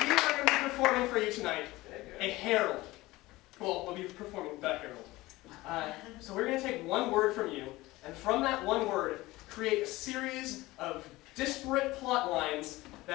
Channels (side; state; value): right; quieter; 19.3 dB